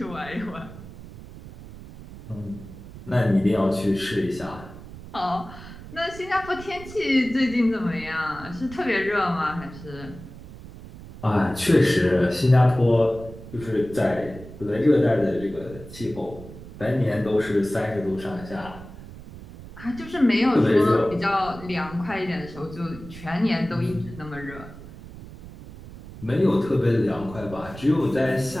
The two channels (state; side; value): noise; right; rumble, 15 dB below the sound